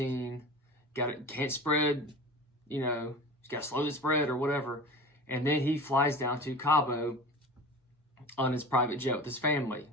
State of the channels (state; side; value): normal; both; correlation 0.35